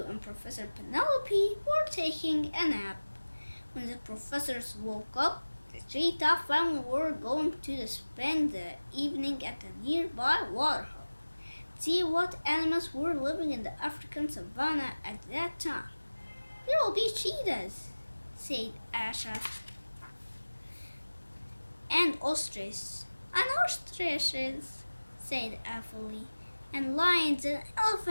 and Professor Penelope, were taking a nap. When the professors woke up, the Treetop family were going to spend the evening at a nearby waterhole. See what animals were living in the African savannah at that time. There will be cheetahs, said Asha, and ostriches, said Afali, and lions and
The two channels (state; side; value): inverted; both; correlation -1.00